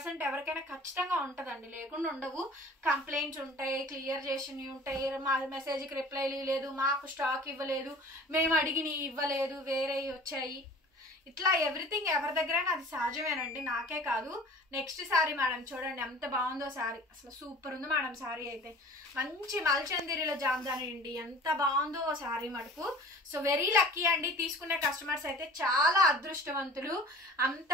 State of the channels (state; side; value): normal; both; correlation 0.45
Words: ఎవరికైనా ఖచ్చితంగా ఉంటుందండి, లేకుండా ఉండవు. కంప్లైంట్స్ ఉంటాయి, క్లియర్ చేసినవి ఉంటాయి. మా మెసేజ్కి రిప్లై లేదు, మాకు స్టాక్ ఇవ్వలేదు, మేము అడిగినవి ఇవ్వలేదు, వేరే వచ్చాయి. ఇట్లా ఎవ్రీథింగ్ ఎవరి దగ్గరైనా అది సహజమేనండి, నాకే కాదు. నెక్స్ట్ శారీ మేడం చూడండి ఎంత బాగుందో శారీ. అసలు సూపర్ ఉంది మేడం శారీ అయితే. మంచి మల్ చందేరిలో జామ్దాని అండి. ఎంత బాగుందో శారీ మటుకు. సో వెరీ లక్కీ అండి. తీసుకునే కస్టమర్స్ అయితే చాలా అదృష్టవంతులు. అంత